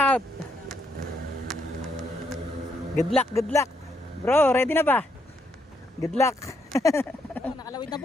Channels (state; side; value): normal; both; correlation 0.76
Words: Good luck, good luck. Bro, ready na ba? Good luck. Nakalawid na